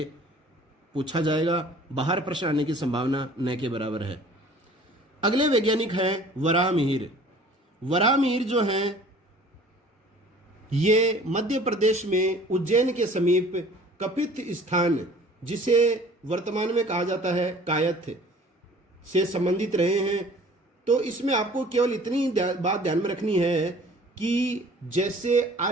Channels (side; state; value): both; normal; correlation 0.49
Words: पूछा जाएगा, बाहर प्रश्न आने की संभावना न के बराबर है। अगले वैज्ञानिक हैं वराहमिहिर। वराहमिहिर जो हैं ये मध्य प्रदेश में उज्जैन के समीप कपित स्थान, जिसे वर्तमान में कहा जाता है कायथ, से संबंधित रहे हैं। तो इसमें आपको केवल इतनी बात ध्यान में रखनी है कि जैसे